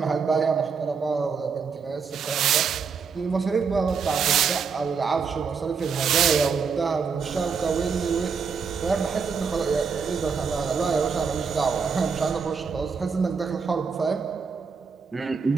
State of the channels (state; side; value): quieter; left; 5.7 dB